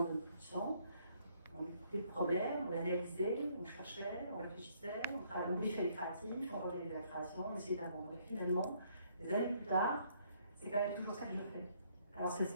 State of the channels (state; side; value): inverted; both; correlation -0.67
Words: veulent plus de sang, on écoutait le problème, on l'analysait, on cherchait, on réfléchissait, on briefait les créatifs, on organisait la création, on essayait d'apprendre. Et finalement, des années plus tard, c'est quand même toujours ça que je fais. Alors ça